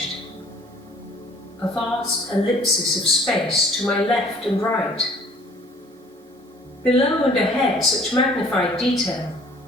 A vast ellipsis of space to my left and right. Below and ahead, such magnified detail.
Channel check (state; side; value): normal; both; correlation 0.54